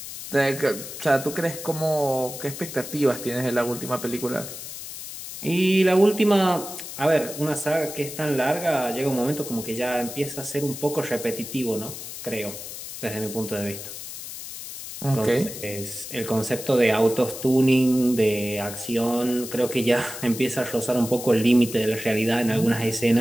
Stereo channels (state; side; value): noise; left; hiss, 10 dB below the sound